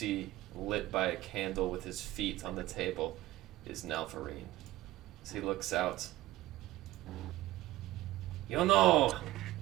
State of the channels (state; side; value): quieter; left; 16.7 dB